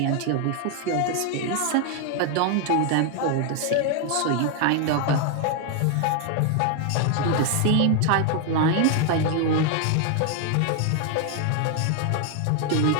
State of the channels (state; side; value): different; both; correlation 0.01